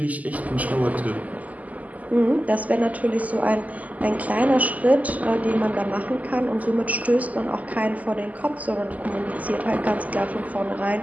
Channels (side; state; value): left; late; 0.075 ms